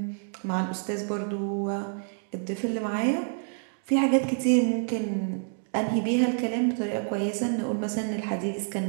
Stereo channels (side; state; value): left; silent; 59 dB below the other